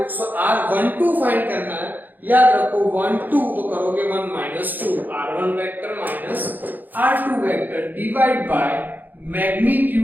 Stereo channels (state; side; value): late; left; 0.086 ms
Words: So r12 find करना है, याद रखो 1 2 तो करोगे 1 minus 2, r1 vector minus r2 vector divide by